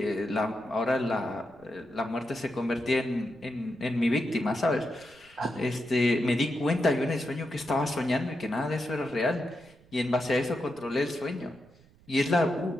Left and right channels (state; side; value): noise; right; rumble, 28 dB below the sound